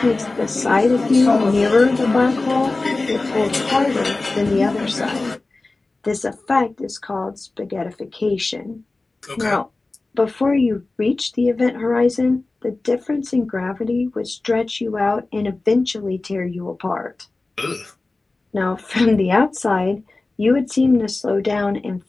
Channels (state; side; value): quieter; right; 3.3 dB